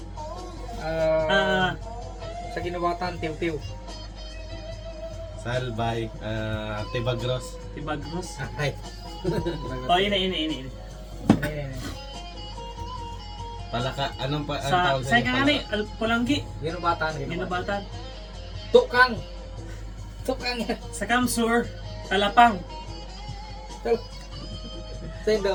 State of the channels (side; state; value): both; identical; correlation 1.00